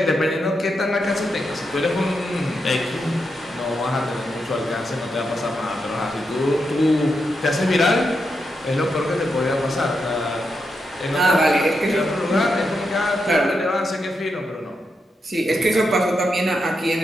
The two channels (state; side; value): normal; both; correlation 0.84